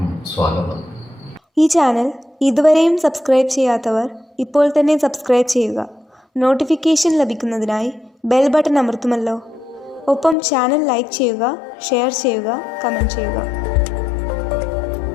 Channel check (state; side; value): drops out; right; at 10.4 s